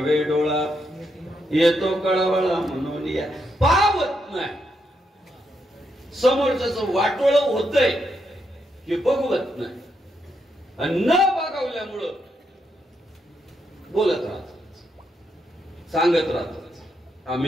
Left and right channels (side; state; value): both; normal; correlation 0.80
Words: डोळा येतो कळवळा म्हणून या पावत नाही. समोरच्याच वाटोळ होतंय की बघवत नाही आणि न बघवल्यामुळं बोलत राहतात सांगत राहतात